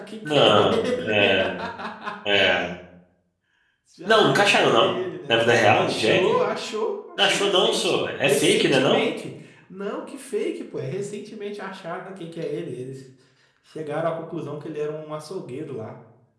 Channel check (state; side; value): identical; both; correlation 1.00